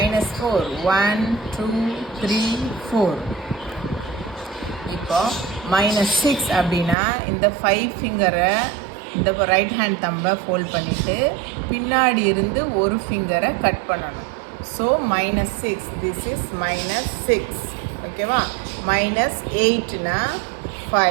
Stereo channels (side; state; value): left; drops out; at 7.0 s